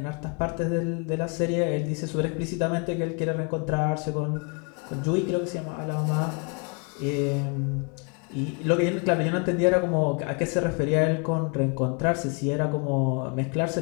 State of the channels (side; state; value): right; quieter; 36.2 dB